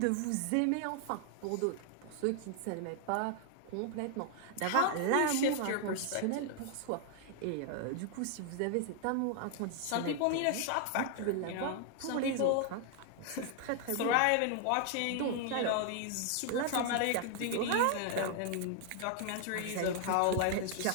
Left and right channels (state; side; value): different; both; correlation 0.00